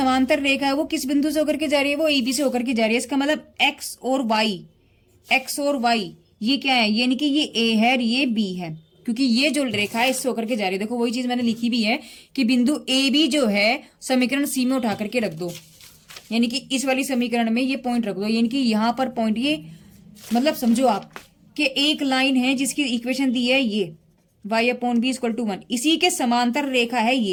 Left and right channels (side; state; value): both; identical; correlation 1.00